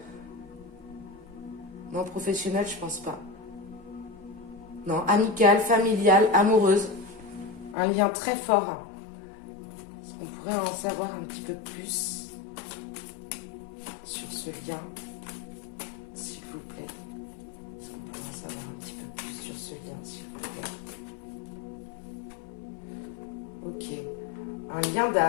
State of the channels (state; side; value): drops out; right; at 7.8 s